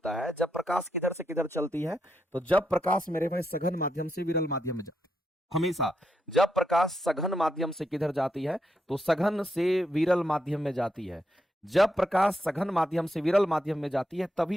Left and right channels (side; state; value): both; normal; correlation 0.82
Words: है? जब प्रकाश किधर से किधर चलती है। तो जब प्रकाश मेरे भाई सघन माध्यम से विरल माध्यम में जाती है। हमेशा जब प्रकाश सघन माध्यम से किधर जाती है? तो सघन से विरल माध्यम में जाती है। जब प्रकाश सघन माध्यम से विरल माध्यम में जाती है